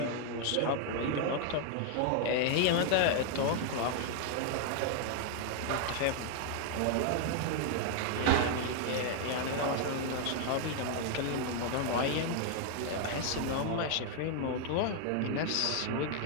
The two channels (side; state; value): both; different; correlation 0.00